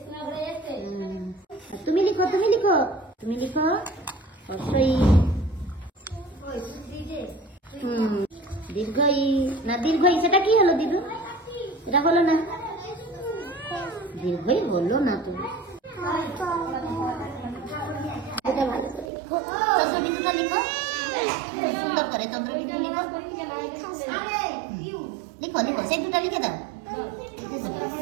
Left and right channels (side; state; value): left; drops out; at 19.1 s